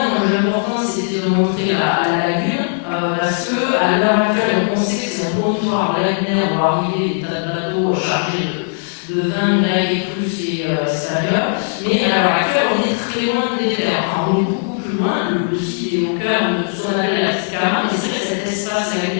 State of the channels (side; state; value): right; silent; 67 dB below the other